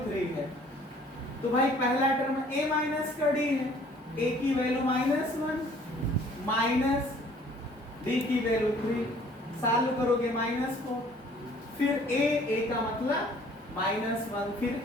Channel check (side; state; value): both; normal; correlation 0.56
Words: 3 है, तो भाई पहला टर्म a माइनस का d है, a की वैल्यू -1 माइनस d की वैल्यू 3, सॉल्व करोगे -4, फिर a का मतलब -1, फिर